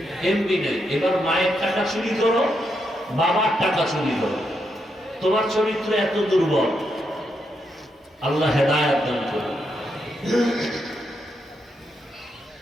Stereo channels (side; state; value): both; normal; correlation 0.81